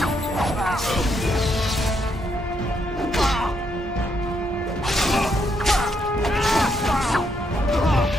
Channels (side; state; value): both; normal; correlation 0.76